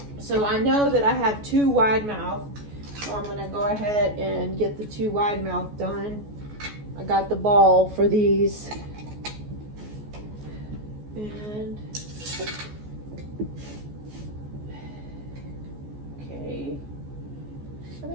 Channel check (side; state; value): left; late; 14 ms